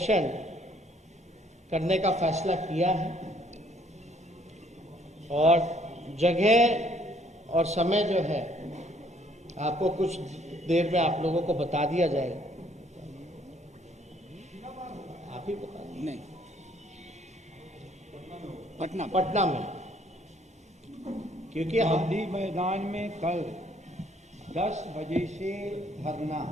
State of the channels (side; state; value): both; normal; correlation 0.63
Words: करने का फैसला किया है और जगह और समय जो है आपको कुछ देर में आप लोगों को बता दिया जाएगा। आप ही बता दें। नहीं, पटना में, क्योंकि हम गांधी मैदान में कल 10 बजे से धरना।